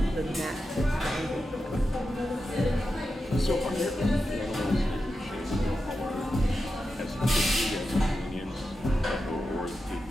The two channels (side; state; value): both; normal; correlation 0.90